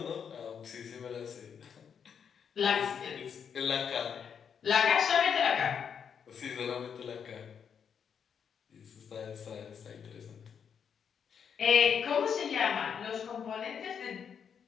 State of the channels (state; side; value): quieter; right; 7.3 dB